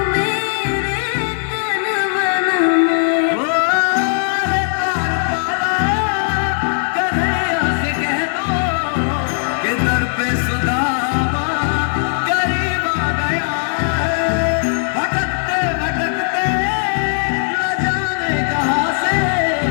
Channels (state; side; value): silent; right; digital silence